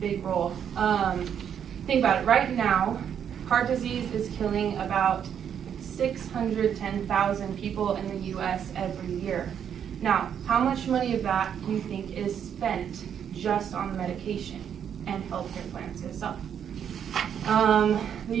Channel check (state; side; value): quieter; left; 8.5 dB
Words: big role. Think about it. Right now, heart disease is killing about 610,000 people in the U.S. every year. Now, how much money of that do you think is spent just on the medication and healthcare plans itself? The